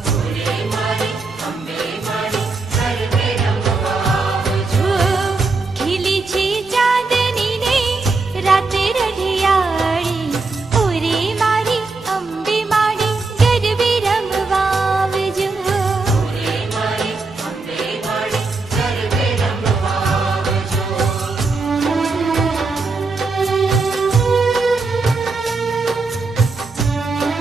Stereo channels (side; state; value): left; quieter; 3.8 dB